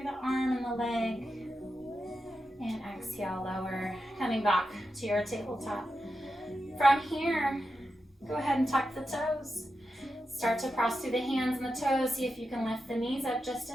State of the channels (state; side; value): normal; both; correlation 0.89